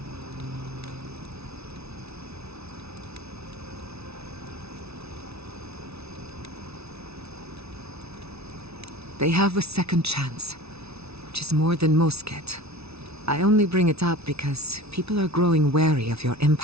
They have a second chance, which is more than most get. I only bring it up because people are growing wary of your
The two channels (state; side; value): late; left; 0.79 ms